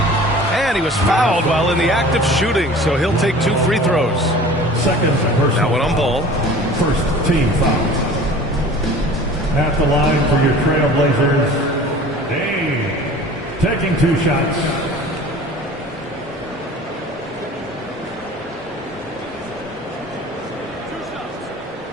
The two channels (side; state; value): both; normal; correlation 0.43